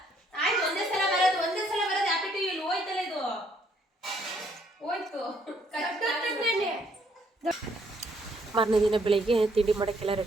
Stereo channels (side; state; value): both; normal; correlation 0.68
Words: ಆಯ್ತು, ಒಂದೇ ಸಲ ಬರೋದು. Happy to you. ಇಲ್ಲಿ ಹೋಯ್ತಲ್ಲ, ಇದು ಹೋಯ್ತು. ಮಾರನೇ ದಿನ ಬೆಳಿಗ್ಗೆ ತಿಂಡಿ ಮಾಡೋಕ್ಕೆಲ್ಲ